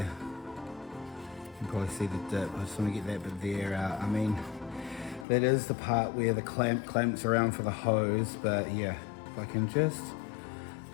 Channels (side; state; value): right; drops out; at 5.2 s